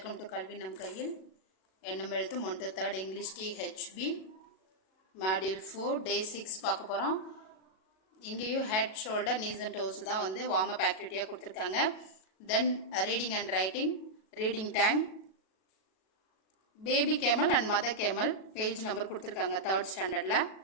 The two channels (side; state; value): right; late; 37 ms